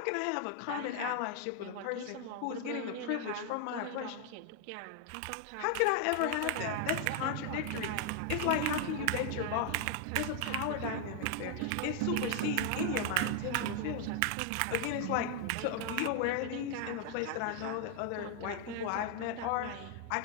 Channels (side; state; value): both; different; correlation 0.00